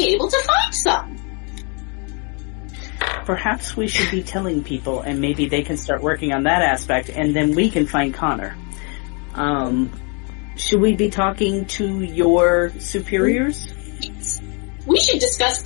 able to find some. Perhaps we should be telling people, and maybe they can start working on that aspect, and then we can find Connor. Should we be talking to your superiors? Yes. We should discuss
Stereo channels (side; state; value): right; quieter; 35.3 dB